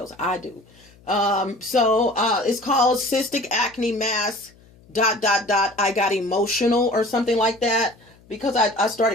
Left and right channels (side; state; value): left; noise; hum, 28 dB below the sound